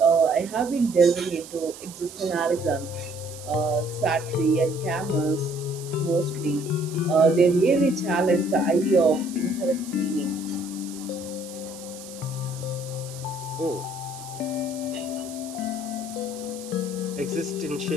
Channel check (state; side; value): noise; right; hiss, 15 dB below the sound